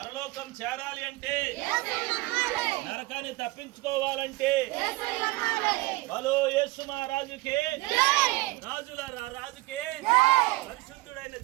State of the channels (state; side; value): quieter; left; 20.7 dB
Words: చేరాలి అంటే, నరకాన్ని తప్పించుకోవాలంటే, బలో యేసు మహారాజుకే, రాజుల రాజుకే, పరిశుద్ధుడైన